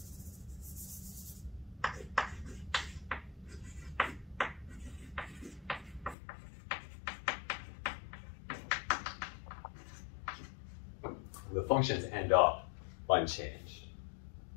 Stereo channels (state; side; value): drops out; right; at 6.2 s